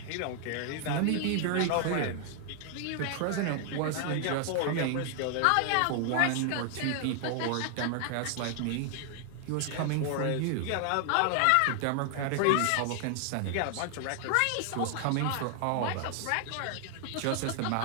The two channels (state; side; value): different; both; correlation 0.00